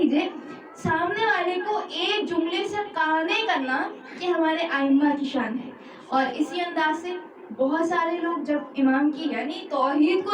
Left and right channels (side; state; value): both; identical; correlation 1.00